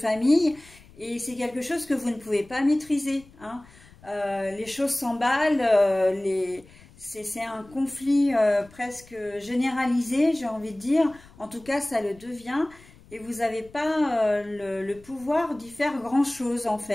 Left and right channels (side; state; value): left; noise; rumble, 24 dB below the sound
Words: et c'est quelque chose que vous ne pouvez pas maîtriser, hein. Les choses s'emballent, c'est un conflit presque généralisé, j'ai envie de dire. En tout cas, ça le devient. Et vous n'avez pas le pouvoir d'y faire grand-chose, en